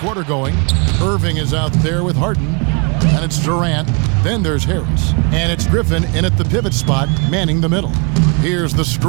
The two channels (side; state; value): left; quieter; 34.1 dB